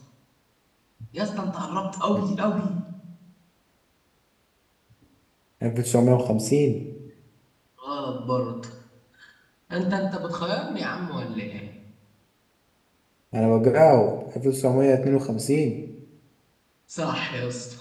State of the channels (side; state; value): both; identical; correlation 1.00